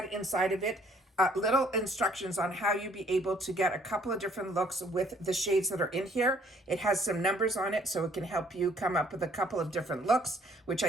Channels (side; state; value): both; normal; correlation 0.61